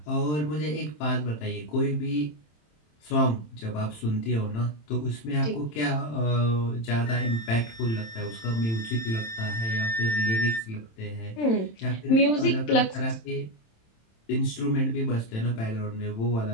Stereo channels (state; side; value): late; right; 27 ms